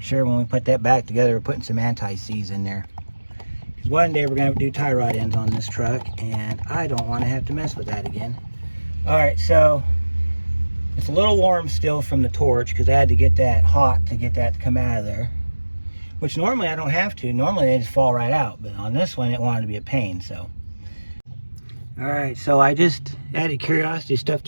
sure when we put that back together, we're putting some anti-seize in there. Because one day we're gonna have to do tie rod ends on this truck, and I don't want to have to mess with that again. All right, so it's a little warm still from the torch because I had to get that hot to get that to come out of there. Which normally I don't have to. Normally they just fall right out, but on this one it wanted to be a pain, so. All right, so I just added curiosity, stuffed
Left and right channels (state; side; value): inverted; both; correlation -1.00